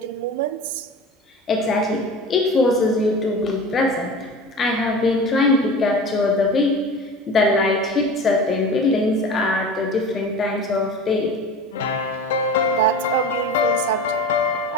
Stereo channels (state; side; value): normal; both; correlation 0.34